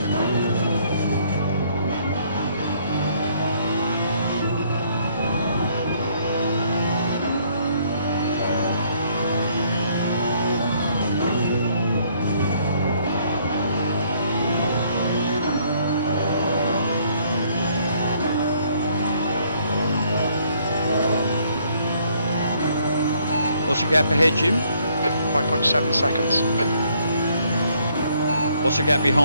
What's the gap ahead, Jim? 5.7 seconds. What's the gap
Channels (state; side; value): inverted; both; correlation -0.65